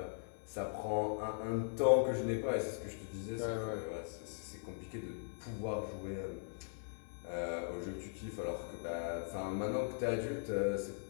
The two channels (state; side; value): silent; right; digital silence